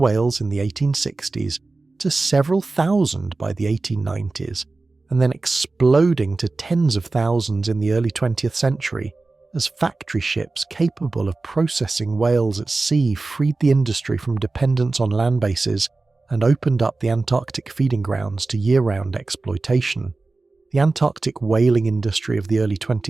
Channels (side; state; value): left; quieter; 3.5 dB